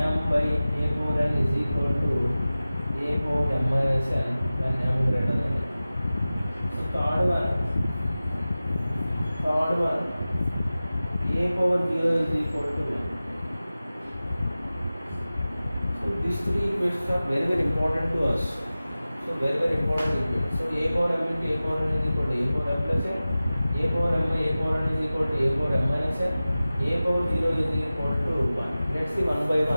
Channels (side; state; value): both; inverted; correlation -0.96